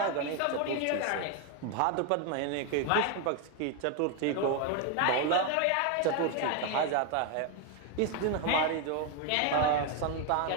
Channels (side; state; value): both; different; correlation 0.01